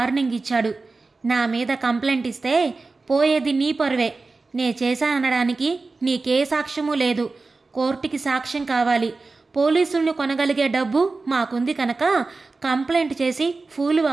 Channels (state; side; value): quieter; left; 3.8 dB